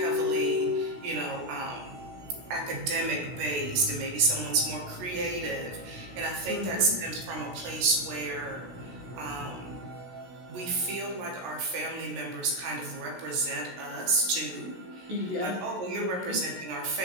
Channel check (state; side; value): late; left; 16 ms